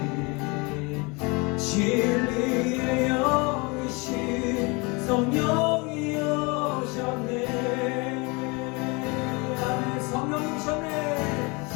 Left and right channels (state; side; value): quieter; right; 28.3 dB